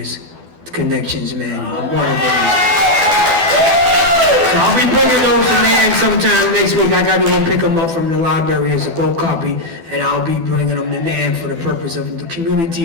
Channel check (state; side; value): late; left; 12 ms